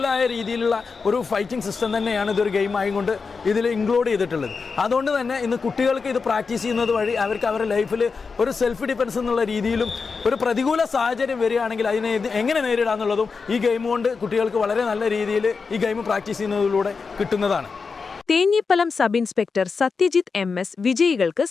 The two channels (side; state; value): right; quieter; 4.9 dB